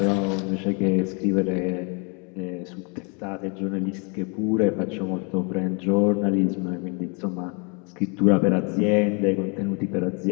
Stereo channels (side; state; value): right; quieter; 33.9 dB